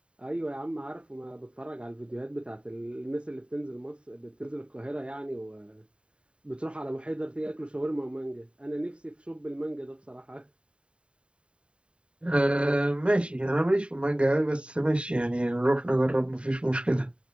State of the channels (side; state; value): left; late; 0.055 ms